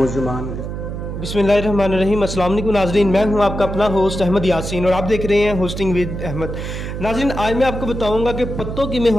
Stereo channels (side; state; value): right; noise; hum, 6 dB below the sound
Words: बिस्मिल्लाहिर्रहमानिर्रहीम। अस्सलाम वालेकुम नाज़रीन, मैं हूं आपका अपना होस्ट अहमद यासीन और आप देख रहे हैं होस्टिंग विद अहमद। नाज़रीन, आज मैं आपको बताऊंगा कि पत्तों में